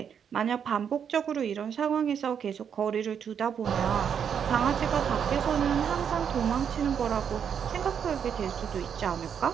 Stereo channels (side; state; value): left; quieter; 7.7 dB